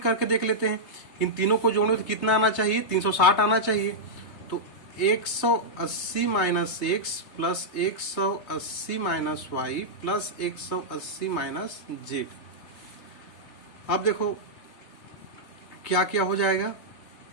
देख लेते हैं। इन तीनों को जोड़ने तो कितना आना चाहिए? 360 आना चाहिए। तो 180 minus x plus 180 minus y plus 180 minus z. अब देखो क्या क्या हो जाएगा,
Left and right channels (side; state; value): right; late; 3.3 ms